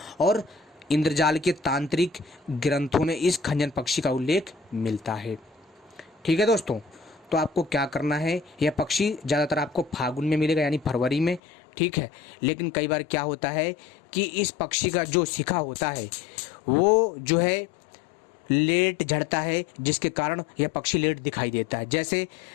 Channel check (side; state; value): right; drops out; at 11.4 s